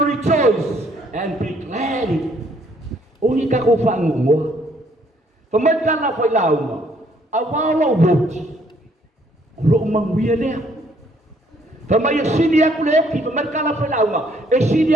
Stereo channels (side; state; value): both; normal; correlation 0.65